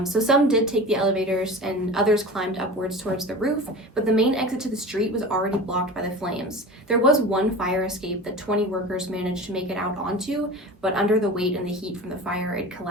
So some did take the elevators and others climbed upwards towards the roof, but the main exit to the street was already blocked by the flames. There was one fire escape that 20 workers managed to make it out onto, but under the weight and the heat from the fire, it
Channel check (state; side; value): normal; both; correlation 0.34